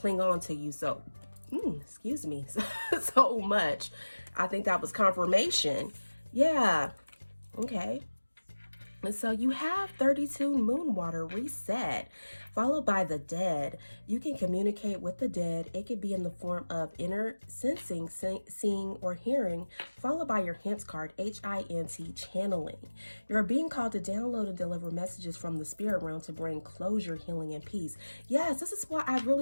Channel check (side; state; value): both; inverted; correlation -1.00